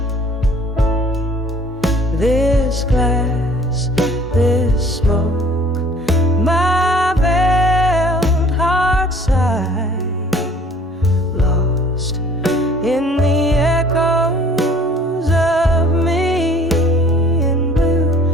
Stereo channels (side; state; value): both; normal; correlation 0.54